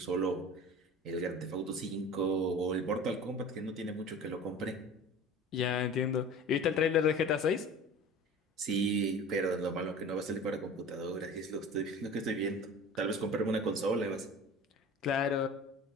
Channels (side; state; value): both; normal; correlation 0.39